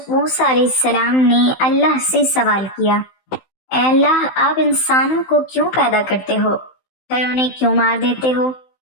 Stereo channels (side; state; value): right; late; 16 ms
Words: موسیٰ علیہ السلام نے اللہ سے سوال کیا، اے اللہ، آپ انسانوں کو کیوں پیدا کرتے ہو پھر انہیں کیوں مار دیتے ہو؟